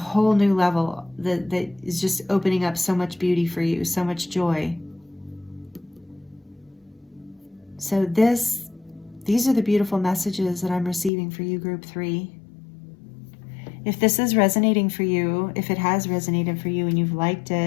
new level that is just opening up so much beauty for you, so much joy. So these are the beautiful messages that I'm receiving for you, Group 3. If this is resonating for you, if it has resonated for you and you've liked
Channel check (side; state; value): right; drops out; at 11.1 s